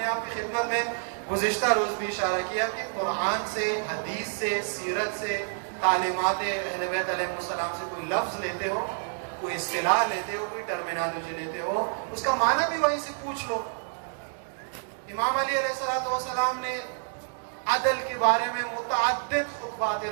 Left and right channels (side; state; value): left; silent; 59 dB below the other